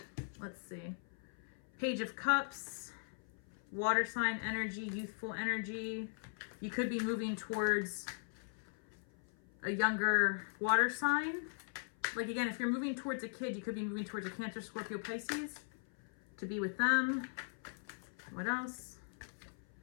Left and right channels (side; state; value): right; silent; 51 dB below the other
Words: Let's see. Page of Cups, water sign energy, youthful energy. You could be moving towards a younger water sign. Like again, if you're moving towards a kid, you could be moving towards a Cancer, Scorpio, Pisces to be with them. What else?